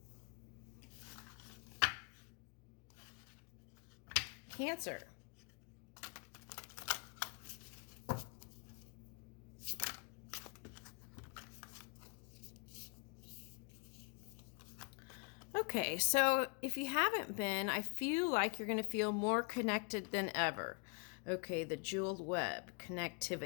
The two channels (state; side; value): quieter; right; 35.4 dB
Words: Cancer. Okay, so if you haven't been, I feel like you're going to feel more connected than ever. Okay, the jeweled web,